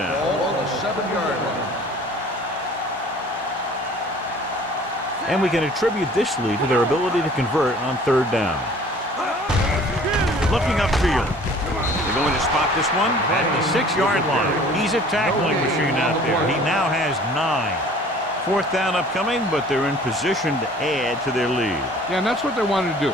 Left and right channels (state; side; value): normal; both; correlation 0.50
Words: Ball on the 7-yard line. And we can attribute this lead to their ability to convert on third down. Looking upfield. They're going to spot this one at the 6-yard line. He's a tackling machine out there. He now has 9. Fourth down upcoming, but they're in position to add to their lead. Yeah, and that's what they wanted to do.